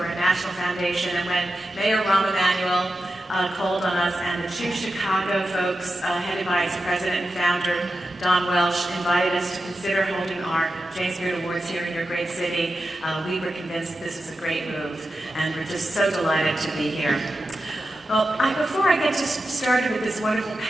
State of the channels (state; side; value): normal; both; correlation 0.91